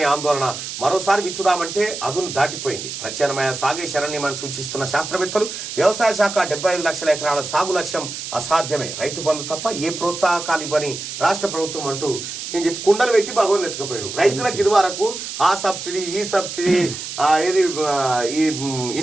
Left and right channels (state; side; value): noise; right; hiss, 8 dB below the sound